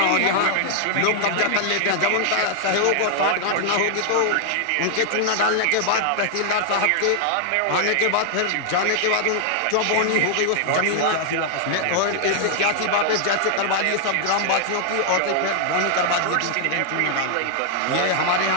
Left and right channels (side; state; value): both; different; correlation 0.00